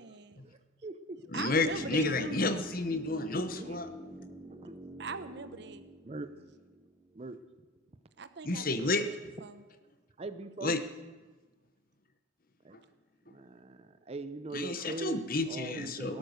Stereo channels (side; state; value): both; normal; correlation 0.36